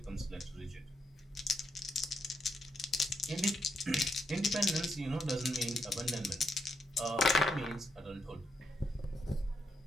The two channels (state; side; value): normal; both; correlation 0.79